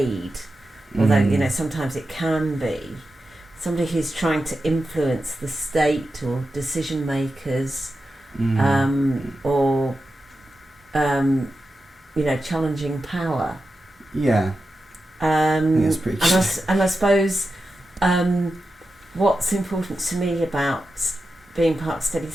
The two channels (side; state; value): both; normal; correlation 0.91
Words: although sometimes it can be. Somebody who's trying to influence the state or decision makers, or challenging power. Yeah. That's pretty true. And I suppose what's important to me about being part of Steady